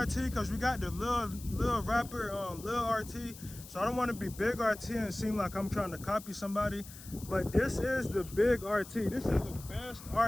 because we got the little rapper Lil RT, so I don't want to be Big RT and seem like I'm trying to copy somebody. But this is the Big RT. This is the best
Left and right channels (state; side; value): noise; left; hiss, 16 dB below the sound